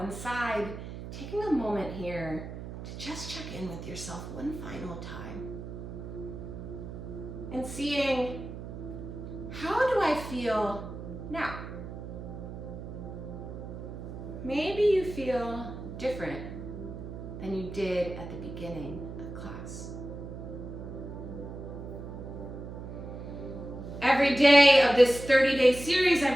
side, taking a moment here to just check in with yourself one final time and seeing, how do I feel now? Maybe you feel different than you did at the beginning of class. Every day of this 30-day series,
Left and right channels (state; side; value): noise; right; hum, 9 dB below the sound